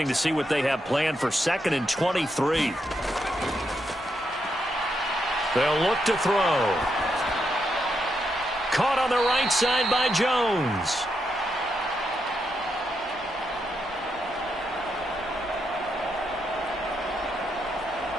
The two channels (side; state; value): both; normal; correlation 0.81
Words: to see what they have planned for 2nd and 23. They'll look to throw. Caught on the right side by Jones.